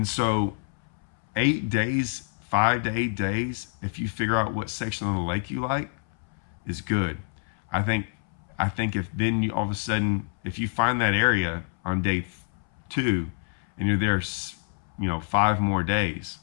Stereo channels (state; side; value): silent; right; 60 dB below the other